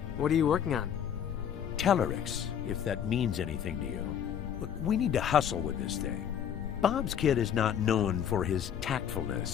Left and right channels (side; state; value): right; quieter; 8.9 dB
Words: What are you working on? Telerix, if that means anything to you. Look, we need to hustle with this thing. Bob's kid is not known for his